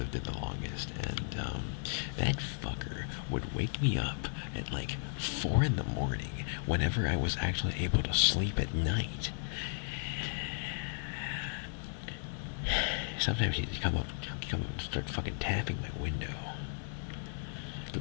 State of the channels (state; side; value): silent; right; digital silence